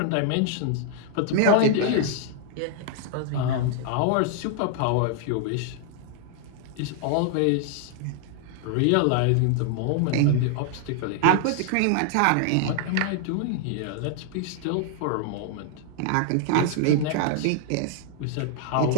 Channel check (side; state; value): both; different; correlation 0.00